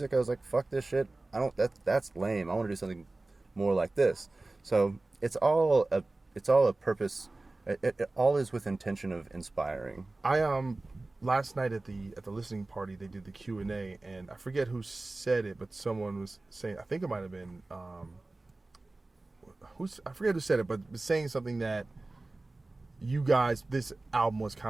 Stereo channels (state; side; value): quieter; left; 3.0 dB